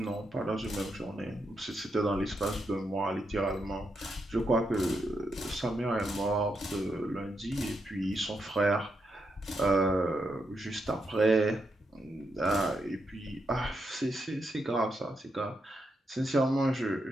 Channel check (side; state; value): both; normal; correlation 0.82